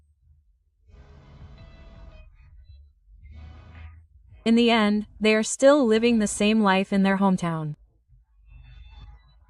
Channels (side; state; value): both; identical; correlation 1.00